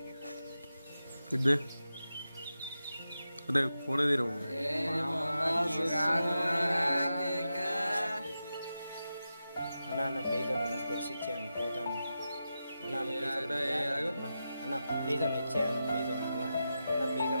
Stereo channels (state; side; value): inverted; both; correlation -0.90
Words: అదే ఫోన్ తీరవు. అన్న ప్లీజ్ అన్న, స్పెట్స్ ఇచ్చేయన్న, పోతాను అన్న. అన్న ప్లీజ్ అన్న ఇచ్చేయన్న, ప్లీజ్ అన్న. అన్న ప్లీజ్